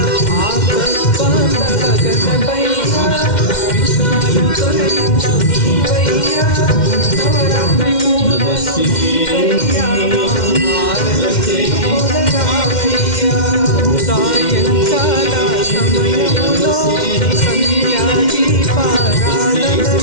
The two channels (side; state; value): right; late; 2.1 ms